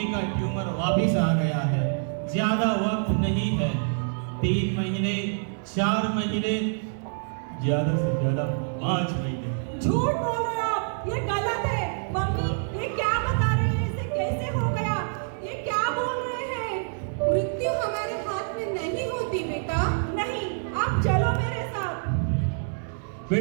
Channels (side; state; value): left; silent; digital silence